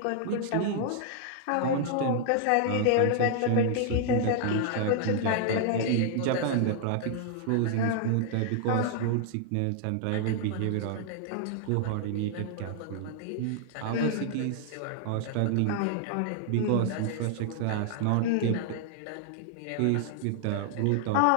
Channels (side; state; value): both; different; correlation 0.00